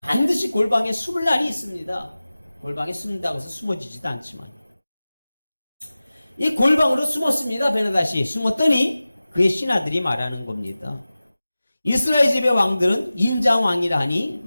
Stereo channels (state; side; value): inverted; both; correlation -0.97